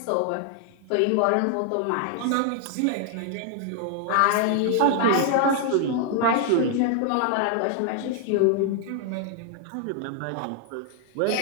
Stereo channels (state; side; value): different; both; correlation 0.00